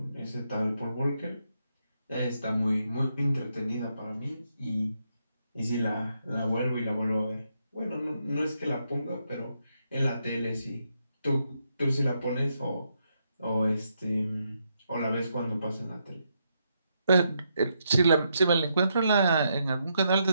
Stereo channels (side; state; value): both; inverted; correlation -0.80